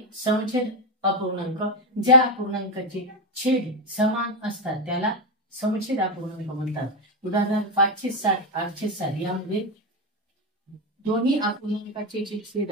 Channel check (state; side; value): normal; both; correlation 0.09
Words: समछेद अपूर्णांक। ज्या अपूर्णांकाचे छेद समान असतात त्याला समछेद अपूर्णांक म्हणतात। उदाहरण 560 860 यामध्ये दोन्ही अपूर्णांकाचे जे छेद